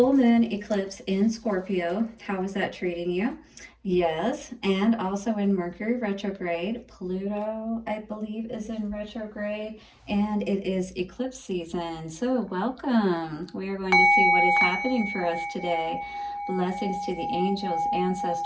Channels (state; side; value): identical; both; correlation 1.00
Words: moon eclipse in Scorpio. How is that treating you? Yes, and also in Mercury retrograde. Pluto, I believe, is in retrograde, and it is eclipse season. So welcome. We are going to see what is happening for us today. Blessings to the angels,